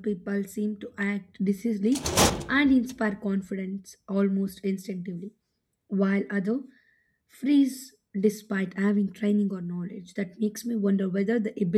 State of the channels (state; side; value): identical; both; correlation 1.00